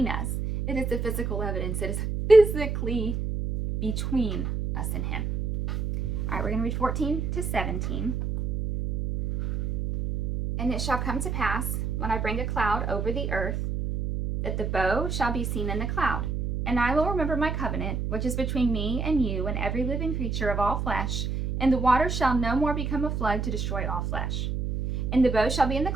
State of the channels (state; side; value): noise; right; hum, 2 dB below the sound